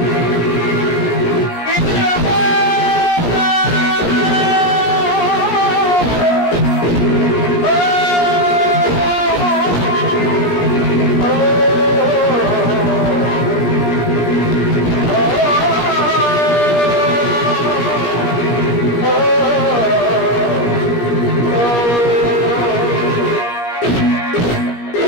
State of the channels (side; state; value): right; late; 17 ms